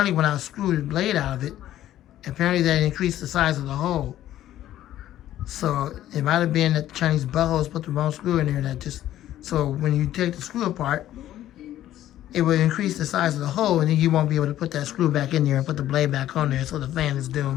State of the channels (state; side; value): quieter; right; 12.9 dB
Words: screwed the blade out of it, apparently that increased the size of the hole. So it might have been that the Chinese buttholes put the wrong screw in there. So when you take the screw apart, it will increase the size of the hole, and then you won't be able to put that screw back in there and put the blade back on there. So the fan is